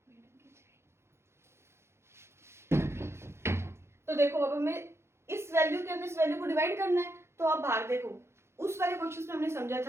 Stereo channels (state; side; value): late; left; 0.13 ms